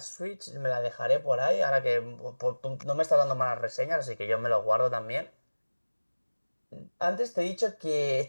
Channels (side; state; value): both; inverted; correlation -1.00